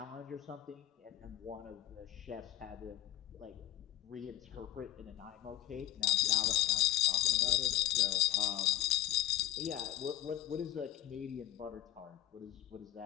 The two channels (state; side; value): quieter; right; 14.8 dB